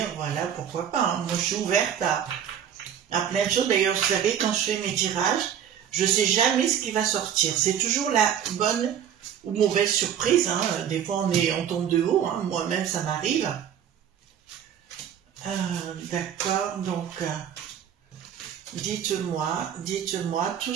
Voilà, pourquoi pas, hein. Moi, je suis ouverte à plein de choses. D'ailleurs, vous savez, quand je fais mes tirages, je sais jamais ce qui va sortir. C'est toujours la bonne ou mauvaise surprise, hein. Des fois, on tombe de haut, hein. Moi-même, ça m'arrive. D'accord, donc, dites-moi tout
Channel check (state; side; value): quieter; left; 9.1 dB